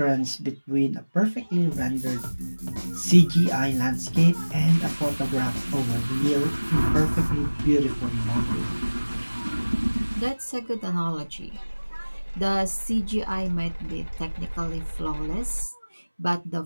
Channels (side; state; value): both; inverted; correlation -1.00